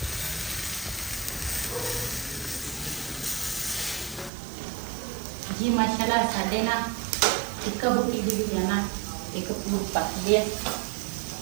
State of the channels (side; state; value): left; drops out; at 4.3 s